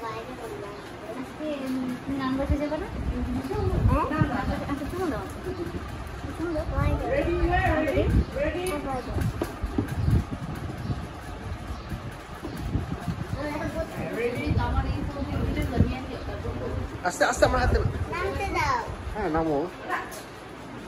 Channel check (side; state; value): both; identical; correlation 1.00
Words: বাইরে করবো আজকে তুমি গান বসে যাবে না আচ্ছা শুনো দাও আস্তে আস্তে আমার হাতে নামতে দাও হ্যাঁ নামো